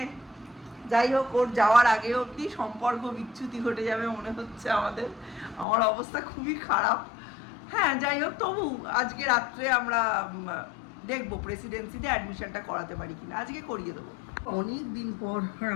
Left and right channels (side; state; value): right; drops out; at 5.7 s